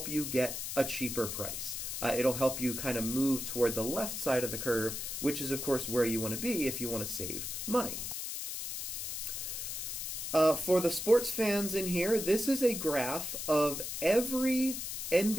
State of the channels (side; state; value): left; noise; hiss, 5 dB below the sound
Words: you get a cheaper price. It'll help you kind of move toward the left side of the curve, which is, of course, where you want to be if you want to save money. For the sports fans in here, this is a graph of every